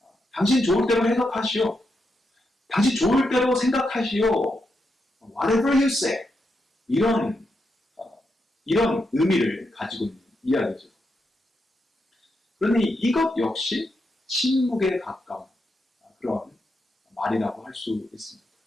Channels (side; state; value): both; normal; correlation 0.84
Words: 해석하시오. 당신 좋을 대로 생각하시오. Whatever you say. 이런 의미를 가지고 있는 이야기죠. 그러니 이것 역시 침묵에 가까운 그런 말이라고 할 수 있습니다.